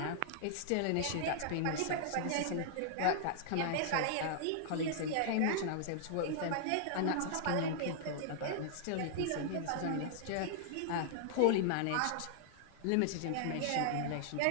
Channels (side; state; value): both; different; correlation -0.01